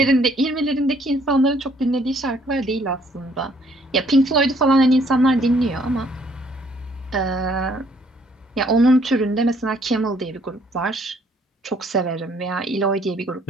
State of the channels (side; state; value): both; normal; correlation 0.64